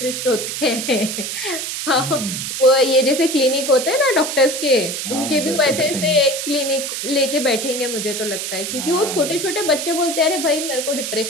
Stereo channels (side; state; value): right; noise; hiss, 4 dB below the sound